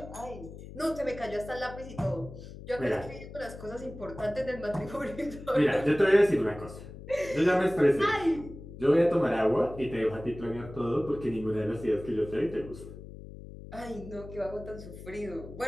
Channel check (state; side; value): noise; left; hum, 14 dB below the sound